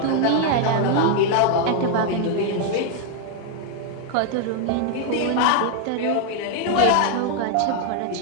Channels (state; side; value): different; both; correlation 0.00